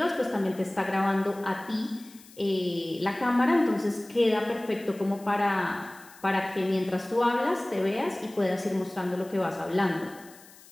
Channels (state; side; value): noise; left; hiss, 23 dB below the sound